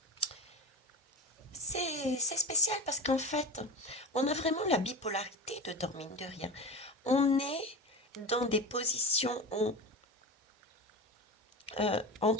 c'est spécial parce qu'en fait, on a vraiment la bipolarité dedans, mine de rien. On est dans des positions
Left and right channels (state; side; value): normal; both; correlation 0.26